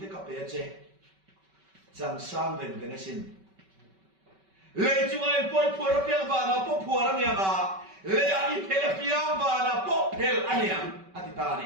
ka pe che chẳng sang về cái xin lấy chúng anh quay phù ra piang và nó bốc phù ra nhà mà lấy anh phê là piang và nó bốc phê anh em anh ta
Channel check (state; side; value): late; left; 5.2 ms